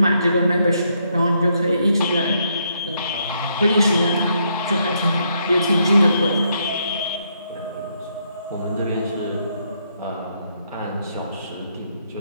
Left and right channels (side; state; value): both; inverted; correlation -0.75